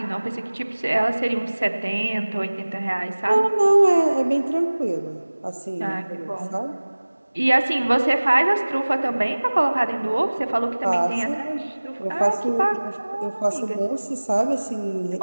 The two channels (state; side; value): inverted; both; correlation -1.00